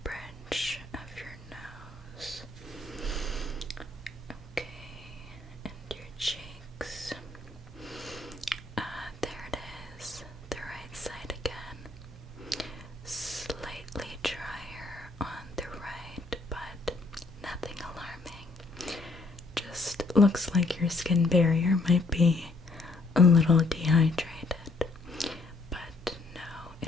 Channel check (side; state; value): right; quieter; 3.3 dB